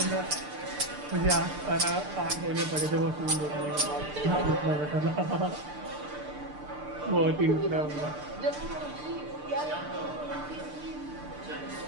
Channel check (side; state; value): left; late; 6.7 ms